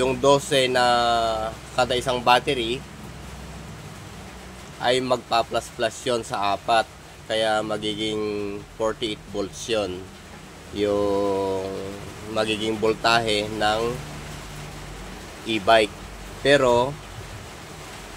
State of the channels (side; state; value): both; identical; correlation 1.00